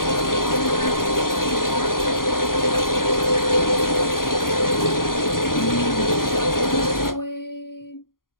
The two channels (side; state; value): right; late; 0.91 ms